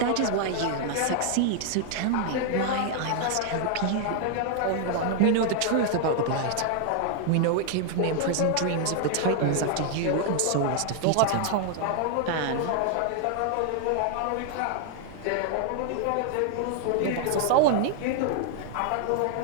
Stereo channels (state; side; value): different; both; correlation 0.00